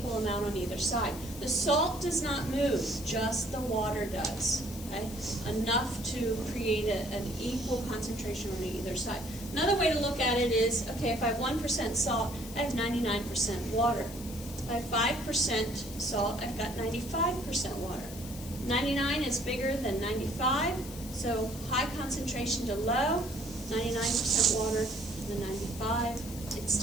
amount on either side. The salt does not move, just the water does, okay? Enough to create an equal concentration on either side. Another way to look at it is, okay, if I have 1% salt, I have 99% water. If I have 5% salt, I've got 95% water. 99 is bigger than 95, so high concentration to low, 99% water, the 95, it's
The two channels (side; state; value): left; noise; hiss, 14 dB below the sound